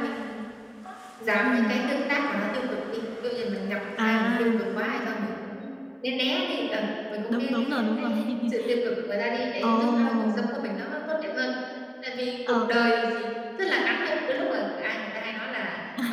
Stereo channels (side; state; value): both; identical; correlation 1.00